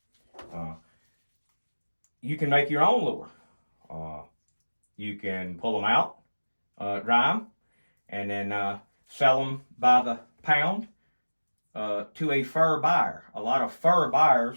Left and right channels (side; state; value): both; inverted; correlation -1.00